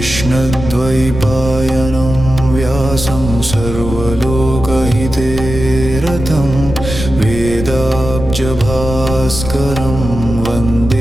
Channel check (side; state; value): left; noise; rumble, 7 dB below the sound